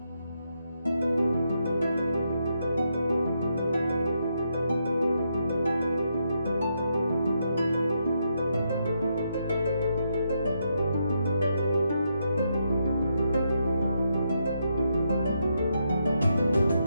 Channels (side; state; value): both; inverted; correlation -0.80